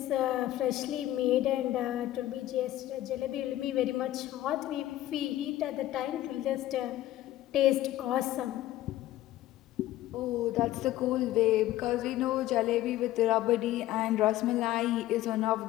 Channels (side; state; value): right; quieter; 14.5 dB